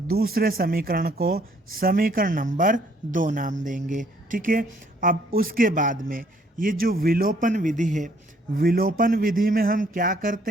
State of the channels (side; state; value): both; normal; correlation 0.64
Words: दूसरे समीकरण को समीकरण नंबर 2 नाम देंगे। ठीक है, अब उसके बाद में ये जो विलोपन विधि है, विलोपन विधि में हम क्या करते